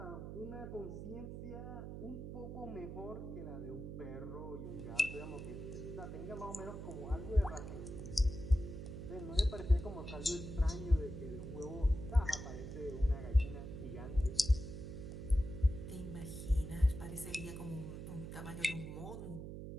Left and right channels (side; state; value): right; noise; hum, 8 dB below the sound